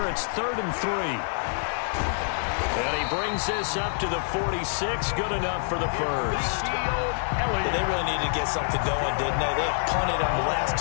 it's 3rd and 3. And he brings this up to the 46. Good enough for the first. They really needed to get something going, didn't they? They had punted on the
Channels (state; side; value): silent; right; digital silence